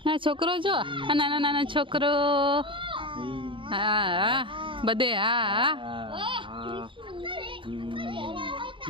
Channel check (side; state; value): left; late; 0.25 ms